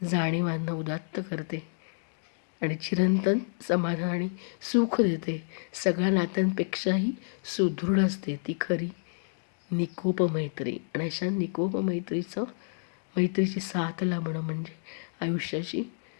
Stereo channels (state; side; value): silent; right; digital silence